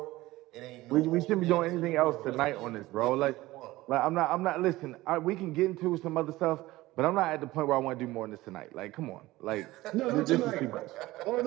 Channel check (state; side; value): quieter; left; 18.2 dB